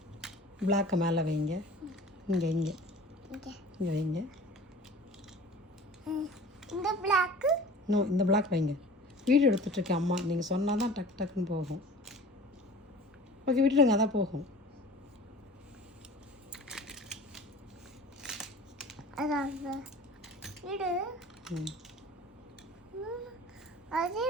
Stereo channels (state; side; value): normal; both; correlation 0.43